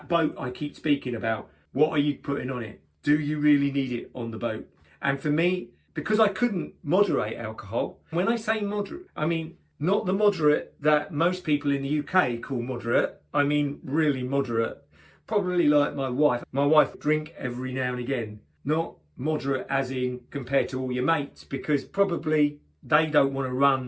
boat I keep speaking about, what are you putting on it? Do you really need it on the boat? And for me, because I couldn't moderate alcohol, when I say moderate, I mean not the moderate that most people in the UK call moderate. I mean really moderate. Probably like my wife. My wife drink every now and again. Not moderate as in compared to all your mates, because probably they don't want to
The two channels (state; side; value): identical; both; correlation 1.00